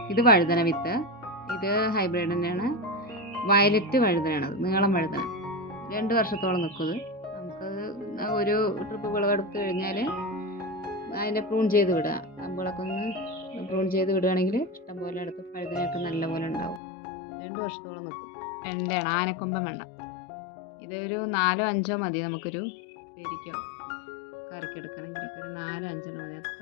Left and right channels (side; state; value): right; drops out; at 16.8 s